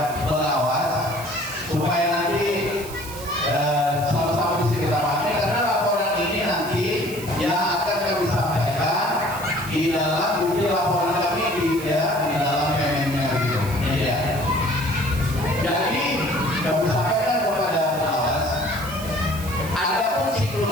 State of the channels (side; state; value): right; noise; hiss, 14 dB below the sound